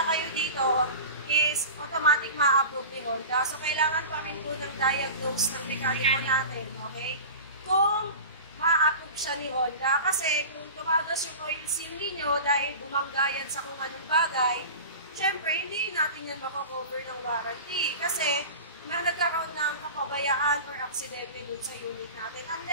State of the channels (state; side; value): inverted; both; correlation -0.33